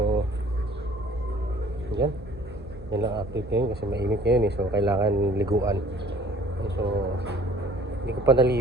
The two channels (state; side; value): normal; both; correlation 0.53